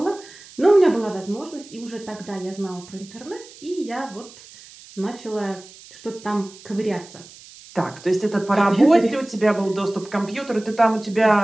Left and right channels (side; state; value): right; noise; hiss, 20 dB below the sound